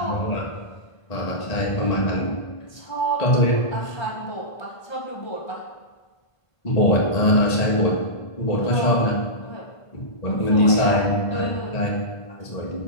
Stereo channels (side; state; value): right; late; 1.5 ms